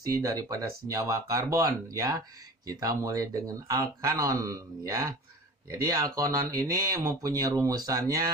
daripada senyawa karbon, ya. Kita mulai dengan alkanon, ya. Jadi alkanon ini mempunyai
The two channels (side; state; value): both; normal; correlation 0.37